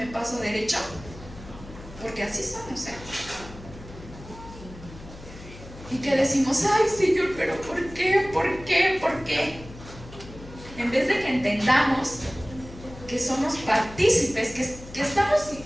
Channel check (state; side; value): noise; left; hum, 16 dB below the sound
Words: paso derecho. Porque así somos, ¿eh? Y que decimos, ay, Señor, pero ¿por qué? ¿Por qué? ¿Por qué? En vez de que entendamos que somos partícipes, que estamos